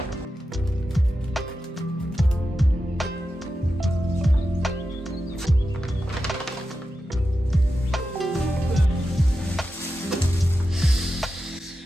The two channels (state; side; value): normal; both; correlation 0.90